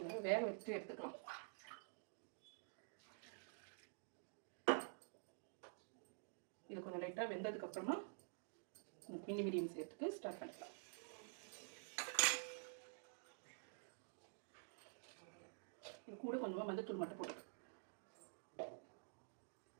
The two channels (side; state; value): left; silent; digital silence